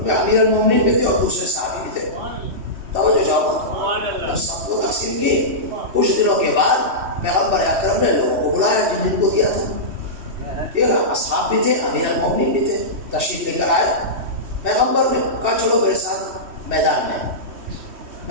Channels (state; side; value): late; left; 3.1 ms